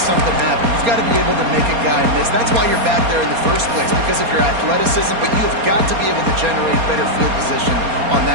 something happen. You've got to be able to make a guy miss. That's why you're back there in the first place, because of your athleticism, but you have got to be able to generate better field position on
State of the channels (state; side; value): late; left; 4.3 ms